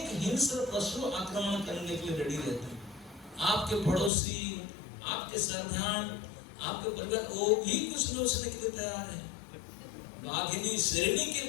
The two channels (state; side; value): drops out; right; at 4.1 s